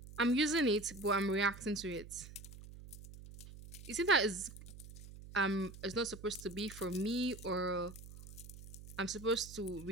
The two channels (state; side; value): noise; right; hum, 15 dB below the sound